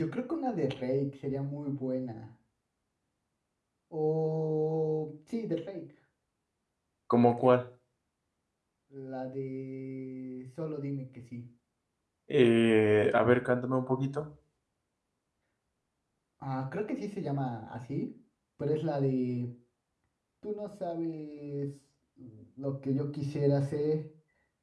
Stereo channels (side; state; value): both; identical; correlation 1.00